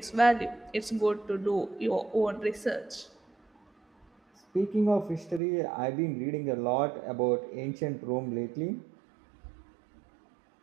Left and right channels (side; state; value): left; drops out; at 5.4 s